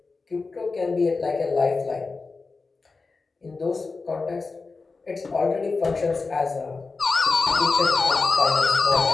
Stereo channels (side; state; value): right; quieter; 4.1 dB